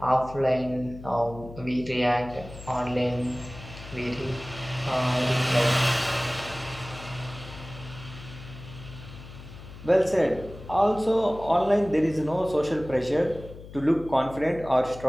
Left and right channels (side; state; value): left; noise; hum, 15 dB below the sound